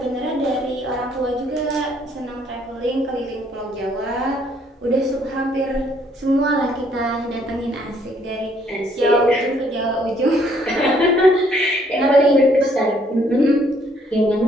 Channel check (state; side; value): normal; both; correlation 0.66